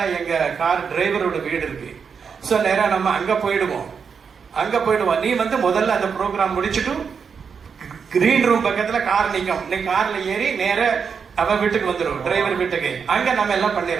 எங்க கார் டிரைவரோட வீடு இருக்கு. ஸோ நேரம் நம்ம அங்க போயிடுவோம். நீ வந்து முதல்ல அந்த ப்ரோக்ராம் முடிச்சுட்டு கிரீன் ரூம் பக்கத்துல கார் நிற்கும், நீ கார்ல ஏறி நேர அவன் வீட்டுக்கு வந்துடும், டிரைவர் வீட்டுக்கு. அங்க நம்ம எல்லாம்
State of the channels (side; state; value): left; quieter; 6.2 dB